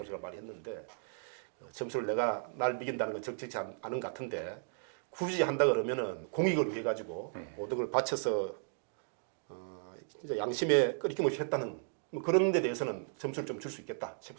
많이 했는데 점수를 내가 날 매긴다는 건 적절치 않은 것 같은데 굳이 한다 그러면은 공익을 위해 가지고 모든 걸 바쳐서 진짜 양심에 끄리낌 없이 했다는 뭐 그런 데 대해서는 점수를 좀 줄 수 있겠다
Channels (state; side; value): silent; left; digital silence